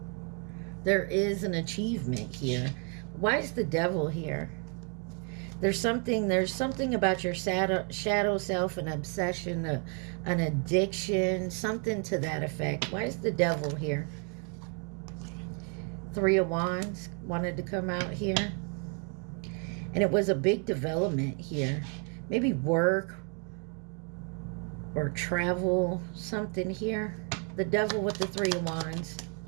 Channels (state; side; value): quieter; left; 36.0 dB